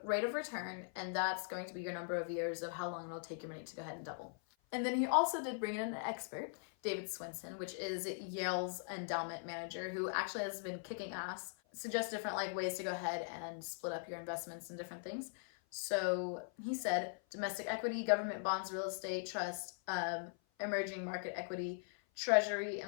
rate of return, and that's going to be your number of years of how long it'll take your money to go ahead and double. And then he also did bring in an expert, David Swanson, which is Yale's endowment manager, who actually has been kicking ass, suggests different like ways to go ahead and split up your investments and different things. So he said domestic equity, government bonds, real estate, trust, emerging market equity, treasury,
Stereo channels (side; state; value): right; silent; 51 dB below the other